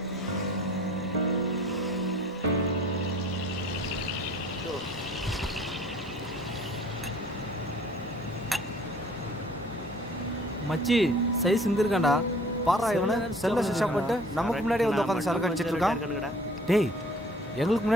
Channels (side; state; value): both; normal; correlation 0.51